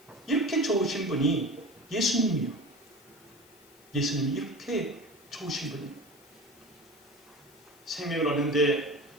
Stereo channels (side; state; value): left; noise; hiss, 27 dB below the sound